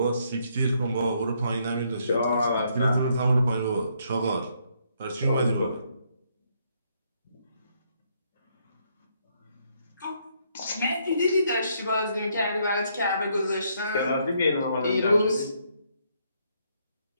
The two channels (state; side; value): inverted; both; correlation -0.72